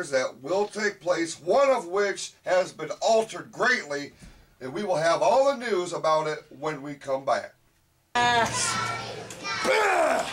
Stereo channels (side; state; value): both; identical; correlation 1.00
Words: that will take place, one of which has been altered greatly, and we will have all the news about it when we come back. And